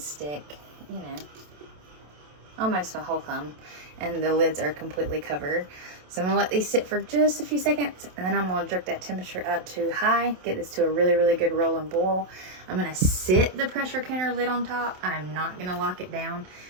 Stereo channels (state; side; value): late; left; 27 ms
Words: you know, almost my whole thumb, and the lids are completely covered. So I'm gonna let these sit for just a few seconds, and then I'm gonna jerk that temperature up to high, get this to a really, really good roll and boil. I'm gonna sit the pressure canner lid on top. I'm not gonna lock it down.